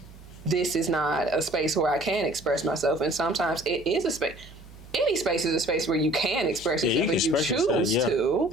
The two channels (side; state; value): right; noise; hum, 19 dB below the sound